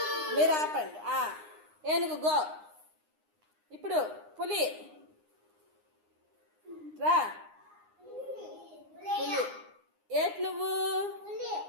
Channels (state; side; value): late; left; 9.7 ms